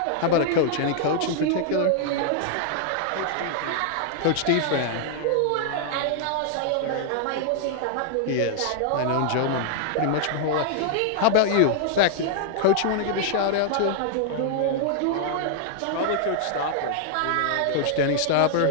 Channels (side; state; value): both; different; correlation -0.01